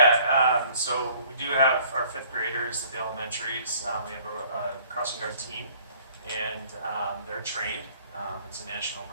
so we do have our 5th graders at the elementaries. We have a crossing guard team, and they're trained. It's a national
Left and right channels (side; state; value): both; inverted; correlation -0.56